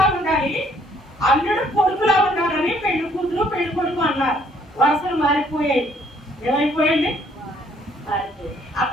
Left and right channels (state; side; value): normal; both; correlation 0.64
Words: ఉండాలి, అల్లుడు కొడుకులా ఉండాలని పెళ్లి కూతురు పెళ్లి కొడుకు అన్నారు. వరుసలు మారిపోయాయి. ఏమైపోయండి? మారిపోయాయి.